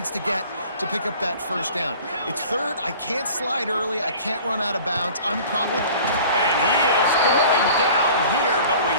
to get to pick up that first down. It's third. I can't slide early. I can't run out of bounds. I'm probably... And he is going down here, but we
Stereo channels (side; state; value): both; inverted; correlation -0.45